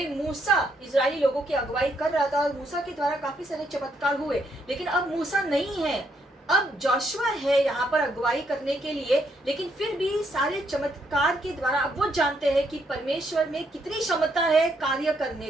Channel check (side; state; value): both; normal; correlation 0.74